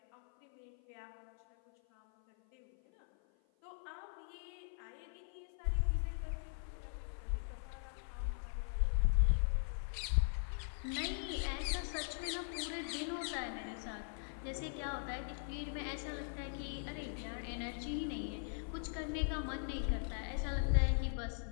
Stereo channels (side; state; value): right; silent; 51 dB below the other